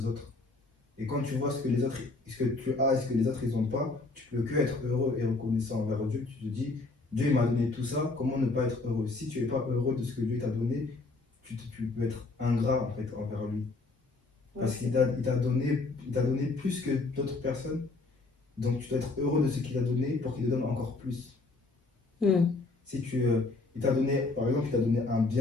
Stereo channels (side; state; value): right; quieter; 3.5 dB